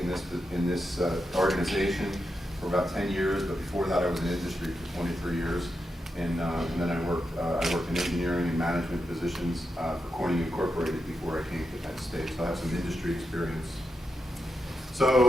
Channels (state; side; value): normal; both; correlation 0.86